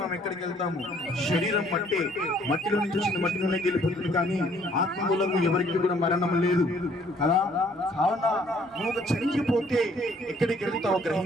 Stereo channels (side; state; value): both; normal; correlation 0.61